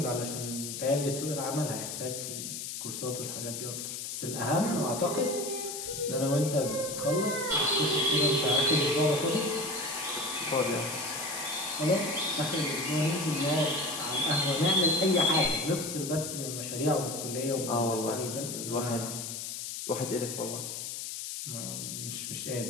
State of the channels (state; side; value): noise; left; hiss, 6 dB below the sound